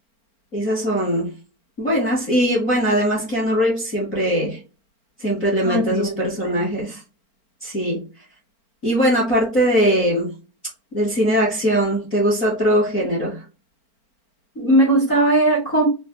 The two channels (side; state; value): right; late; 4.4 ms